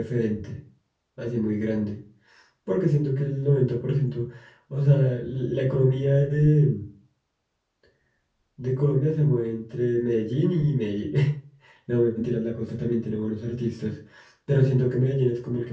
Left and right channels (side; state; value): both; identical; correlation 1.00